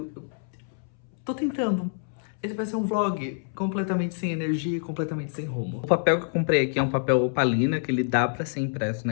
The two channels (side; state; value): right; silent; 60 dB below the other